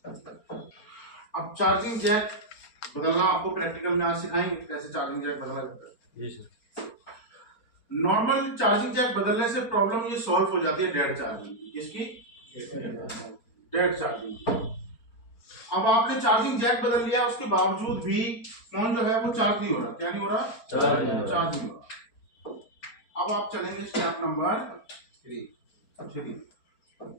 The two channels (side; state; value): right; late; 4.4 ms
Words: अब चार्जिंग जैक बदलना आपको प्रैक्टिकल में आज सिखाएंगे कैसे चार्जिंग जैक बदला जाता है। जी सर। नॉर्मल चार्जिंग जैक बदलने से प्रॉब्लम ये सॉल्व हो जाती है डेड चार्जिंग की। किसकी? Dead charging. अब आपने चार्जिंग जैक बदल लिया, उसके बावजूद भी फोन जो है वो चार्ज नहीं हो रहा। क्या नहीं हो रहा? चार्ज नहीं हो रहा। अब आप चलेंगे step number 3।